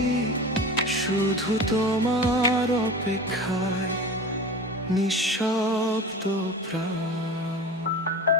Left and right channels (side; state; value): both; normal; correlation 0.34